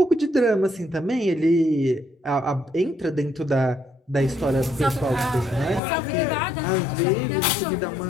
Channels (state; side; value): drops out; right; at 5.8 s